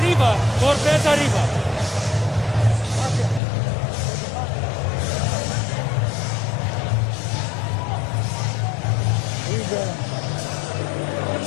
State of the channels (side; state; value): right; drops out; at 3.4 s